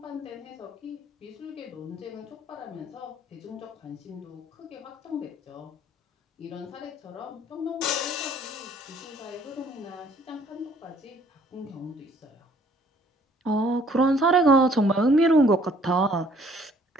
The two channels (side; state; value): both; normal; correlation 0.60